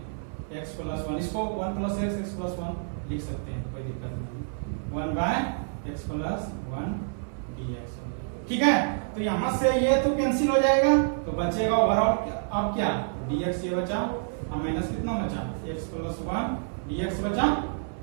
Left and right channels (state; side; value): silent; left; 59 dB below the other